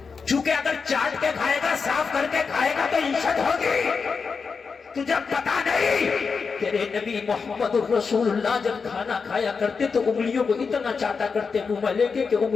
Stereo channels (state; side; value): quieter; right; 5.2 dB